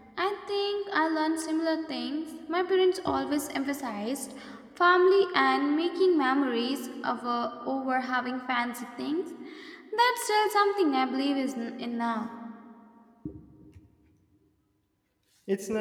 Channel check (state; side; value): identical; both; correlation 1.00